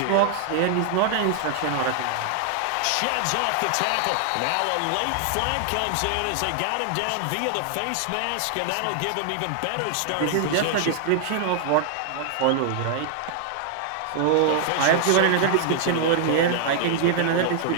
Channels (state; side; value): different; both; correlation -0.01